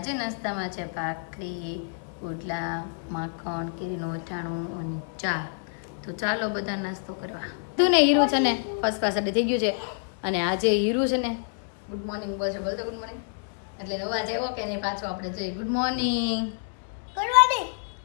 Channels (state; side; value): silent; right; 60 dB below the other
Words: નાસ્તામાં છે ભાખરી, પુડલા, માખણ, કેરીનું અથાણું અને ચા. તો ચાલો બધા નાસ્તો કરવા. તું ને હીરુ છે ને ફર્સ્ટ ક્લાસ રેડી થઈ ગયું છે. અને આજે હીરુ છે ને ગુડ મોર્નિંગ બોલશે, બોલતો ગુડ મોર્નિંગ એટલે અવાજ આવ્યો કે નહીં પાછો આપણે જઈએ. ગુડ મોર્નિંગ, ગુડ મોર્નિંગ,